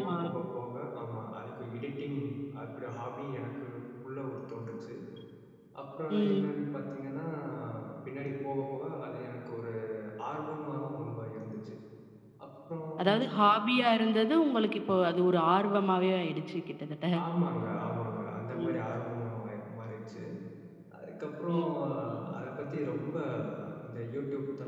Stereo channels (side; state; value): both; identical; correlation 1.00